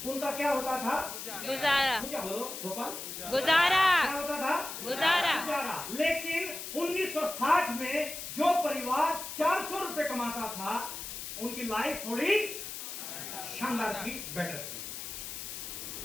उनका क्या होता था? गुजारा। बोलो गोपाल। गुजारा। क्या होता था? गुजारा। गुजारा। लेकिन 1960 में जो परिवार 400 रुपए कमाता था उनकी लाइफ थोड़ी शानदार थी, बेटर थी।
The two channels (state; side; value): noise; left; hiss, 8 dB below the sound